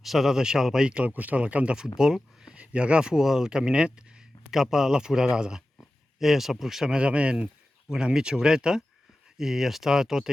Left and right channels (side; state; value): both; normal; correlation 0.94